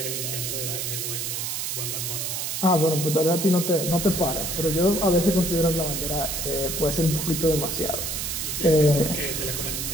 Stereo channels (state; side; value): noise; right; hiss, 3 dB below the sound